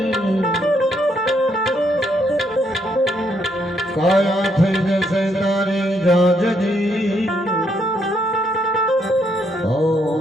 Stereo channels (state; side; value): normal; both; correlation 0.74